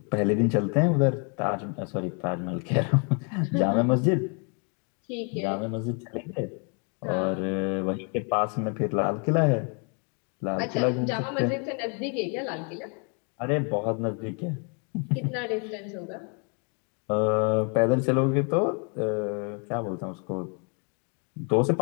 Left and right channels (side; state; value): right; quieter; 38.0 dB